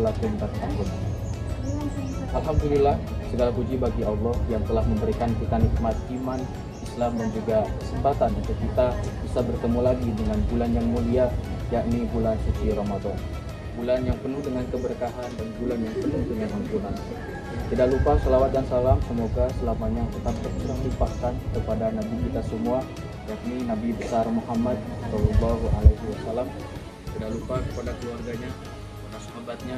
tattaqun. Alhamdulillah, segala puji bagi Allah yang telah memberikan kita nikmat iman, Islam dan juga kesempatan untuk kita bisa bertemu lagi dengan bulan yang mulia, yakni bulan suci Ramadan. Bulan yang penuh dengan keberkahan dan bulan yang penuh dengan ampunan. Tidak lupa salawat dan salam semoga selamanya tetap tercurah limpahkan kepada Nabi kita semua, yakni Nabi besar Muhammad Shallallahu Alaihi Wasallam. Tidak lupa kepada keluarganya,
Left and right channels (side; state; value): both; identical; correlation 1.00